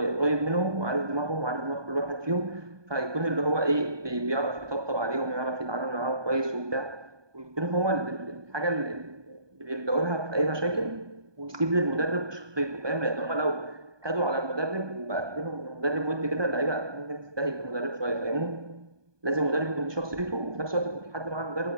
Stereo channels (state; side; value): late; left; 1.2 ms